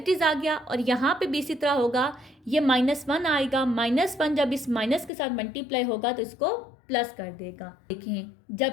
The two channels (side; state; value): right; drops out; at 5.1 s